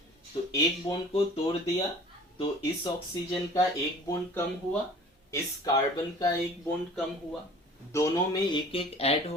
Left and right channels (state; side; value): normal; both; correlation 0.46